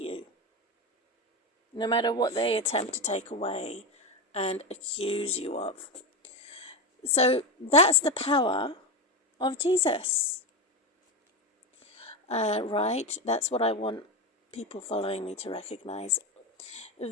no matter what they attempt to take away and accuse you of. So that's the power of Jesus. Right? That's what I want people following me to recognize.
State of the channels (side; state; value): both; normal; correlation 0.15